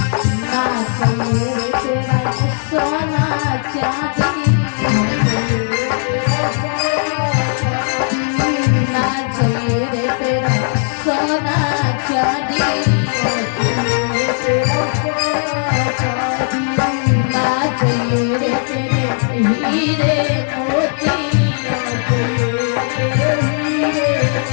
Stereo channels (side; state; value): right; silent; 66 dB below the other